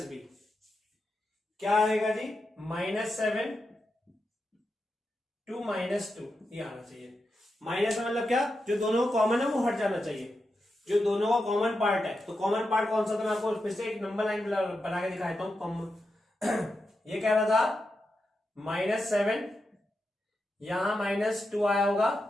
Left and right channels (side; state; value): both; normal; correlation 0.88